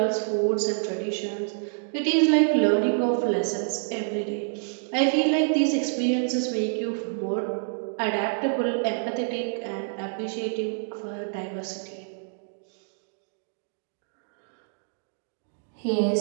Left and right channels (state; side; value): silent; left; digital silence